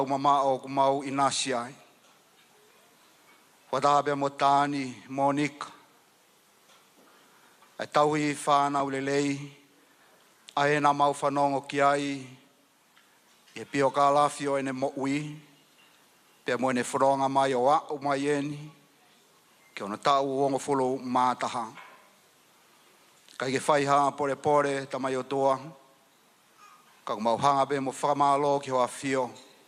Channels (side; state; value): both; identical; correlation 1.00